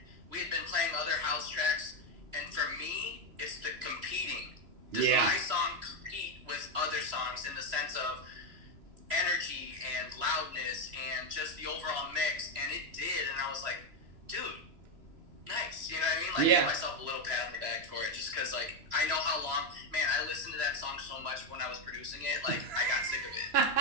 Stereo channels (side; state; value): left; late; 3.0 ms